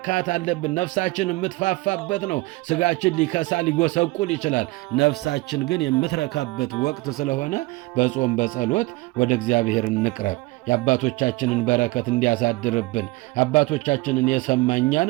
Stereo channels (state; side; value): quieter; left; 21.6 dB